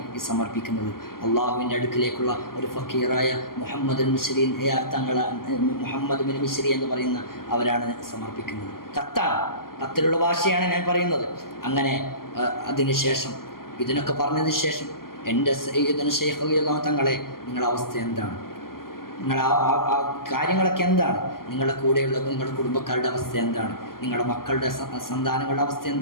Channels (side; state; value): right; late; 0.92 ms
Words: ഈ സമർപ്പിക്കുന്നത്. അള്ളാഹുവിൻ്റെ അടുക്കിലേക്കുള്ള ഒരു ഫക്കീറായ മുഹമ്മദ് മിശ്രി മുഹമ്മദ് ബിൻ മിശ്രി എന്ന് പറയുന്ന അവരാണ് സമർപ്പിക്കുന്നത്. കത്തിലുള്ള ഭാഷയാണ് ഞാൻ പറയുന്നത്. അങ്ങനെ അതിനുശേഷം ഇതിനൊക്കെ പറഞ്ഞതിന് ശേഷം എൻ്റെ സയ്യിദുനാ ശൈഖ് റളിയല്ലാഹു തങ്ങളെ, നിങ്ങളുടെ അവസ്ഥ എന്താണ്? നിങ്ങൾ ആ കാര്യങ്ങളൊക്കെ എന്താണ്? നിങ്ങളുടെ കൂടെയുള്ള നിങ്ങളുടെ കുടുംബക്കാരുടെ അവസ്ഥ എന്താണ്? നിങ്ങളുടെ മക്കളുടെ സന്താനങ്ങളുടെ അവസ്ഥ